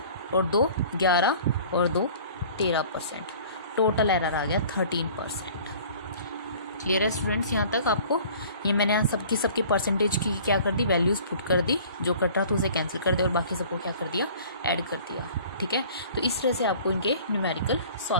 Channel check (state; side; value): inverted; both; correlation -0.47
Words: और 2 11 और 2 13%. टोटल एरर आ गया 13%. क्लियर है स्टूडेंट्स यहाँ तक आपको? ये मैंने यहाँ सबकी परसेंटेज की क्या कर दी, वैल्यूज़ पुट कर दी, जो कट रहा था उसे कैंसिल कर दिया और बाकी सबको क्या कर दिया, ऐड कर दिया. ठीक है. तो इस तरह से आपको इनके न्यूमेरिकल